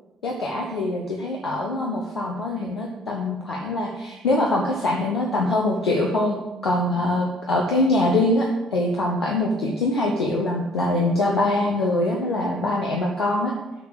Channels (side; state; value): both; normal; correlation 0.53